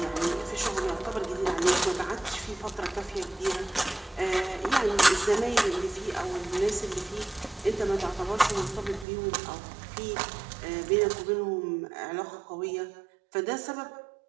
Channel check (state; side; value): drops out; left; at 9.1 s